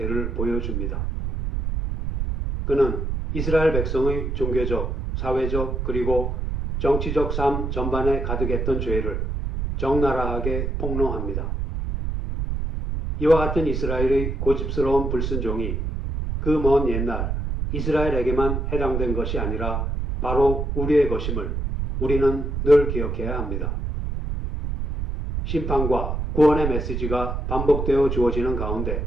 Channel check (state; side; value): noise; right; rumble, 2 dB below the sound